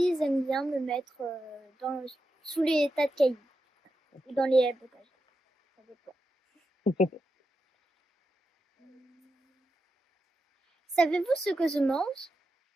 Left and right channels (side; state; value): both; normal; correlation 0.88